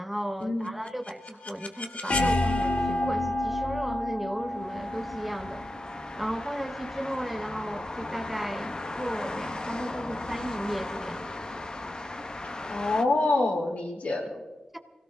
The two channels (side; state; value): both; normal; correlation 0.90